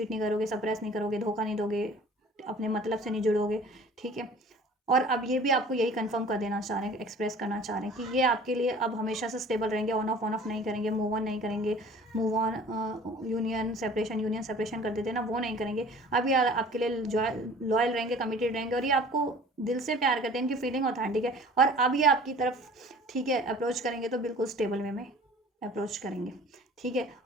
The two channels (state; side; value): normal; both; correlation 0.47